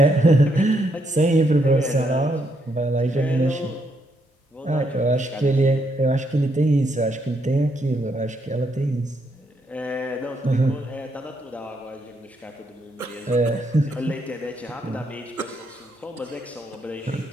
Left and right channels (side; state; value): both; normal; correlation 0.76